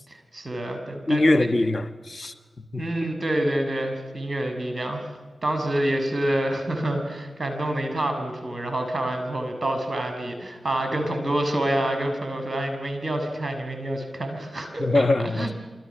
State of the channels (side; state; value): both; normal; correlation 0.93